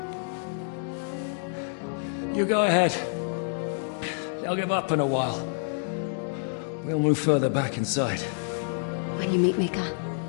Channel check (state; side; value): silent; right; digital silence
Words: You go ahead. They'll give up in a while. We'll move further back inside. When you meet Mika,